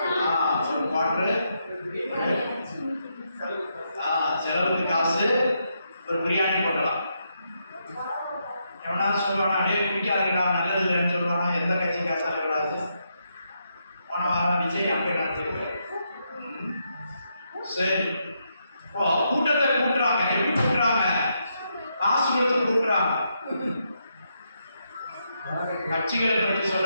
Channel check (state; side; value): inverted; both; correlation -0.80